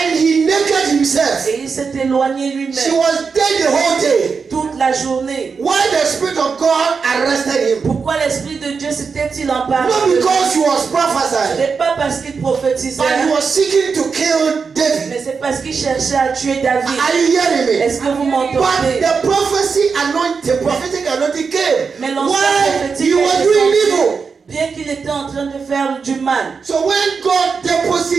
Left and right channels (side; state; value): left; quieter; 5.4 dB